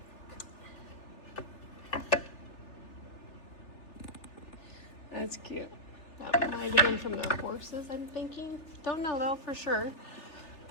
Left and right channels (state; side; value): late; right; 3.3 ms